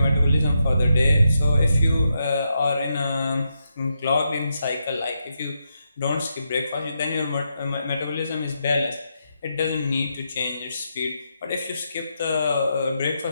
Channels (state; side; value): inverted; both; correlation -0.83